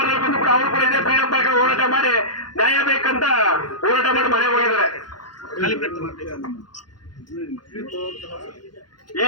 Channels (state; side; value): late; right; 0.71 ms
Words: ಬಂದು ಕೂಡ ಅವರು ಕೂಡ ಇದೆ ಫ್ರೀಡಂ ಪಾರ್ಕ್ ಹೋರಾಟ ಮಾಡಿ ನ್ಯಾಯ ಬೇಕಂತ ಹೋರಾಟ ಮಾಡಿ ಮನೆಗೆ ಹೋಗಿದ್ದಾರೆ.